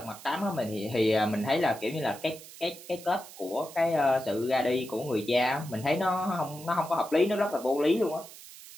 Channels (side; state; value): right; noise; hiss, 17 dB below the sound